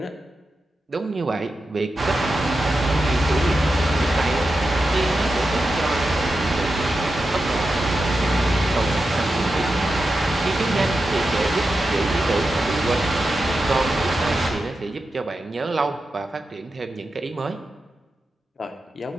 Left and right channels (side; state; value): both; normal; correlation 0.90